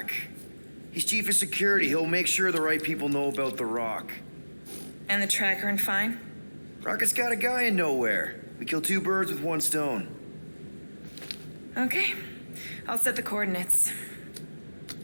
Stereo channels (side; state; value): both; inverted; correlation -1.00